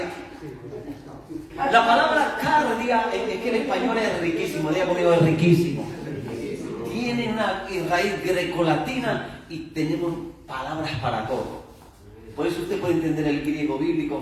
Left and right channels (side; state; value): both; identical; correlation 1.00